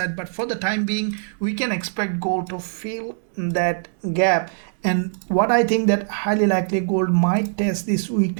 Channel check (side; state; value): left; silent; digital silence